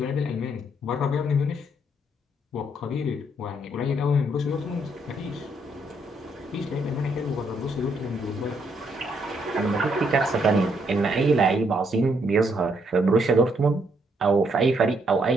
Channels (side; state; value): both; normal; correlation 0.73